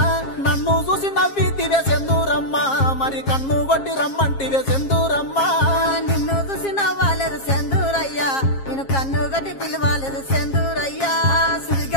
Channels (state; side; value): late; right; 7.4 ms